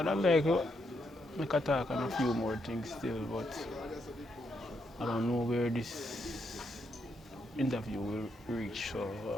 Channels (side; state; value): both; normal; correlation 0.79